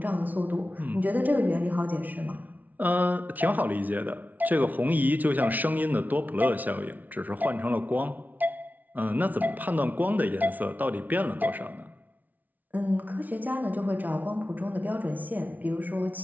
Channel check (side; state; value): left; late; 0.078 ms